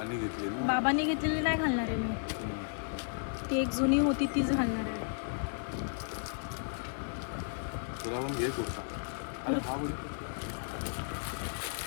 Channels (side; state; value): right; silent; 55 dB below the other